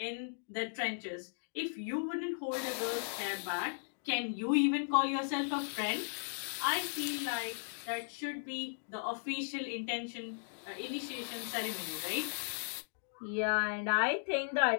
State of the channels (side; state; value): right; silent; digital silence